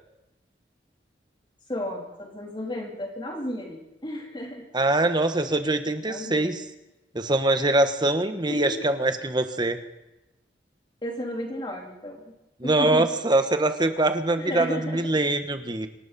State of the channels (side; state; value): both; normal; correlation 0.46